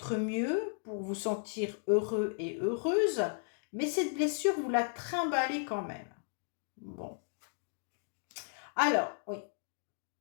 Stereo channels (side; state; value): right; silent; digital silence